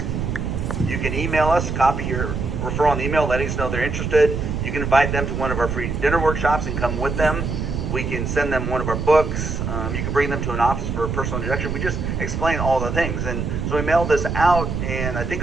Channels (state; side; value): noise; right; rumble, 3 dB below the sound